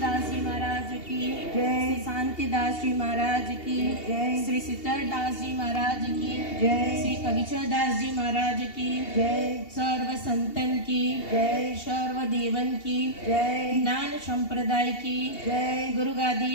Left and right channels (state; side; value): late; right; 2.7 ms